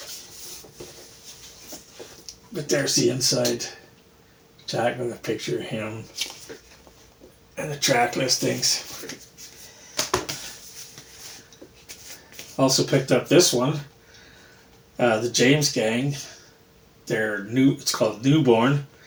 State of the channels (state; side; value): identical; both; correlation 1.00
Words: But there's the inside jack with a picture of him and the track listings. Also picked up this one, the James Gang. It's called Newborn.